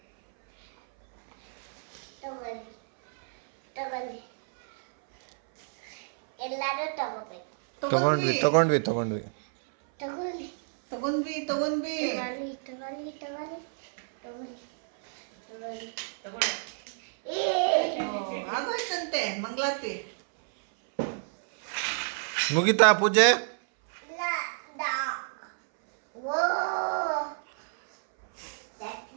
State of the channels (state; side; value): silent; left; 59 dB below the other